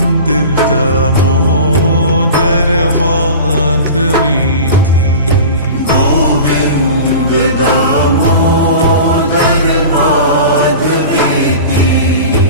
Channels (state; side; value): inverted; both; correlation -0.35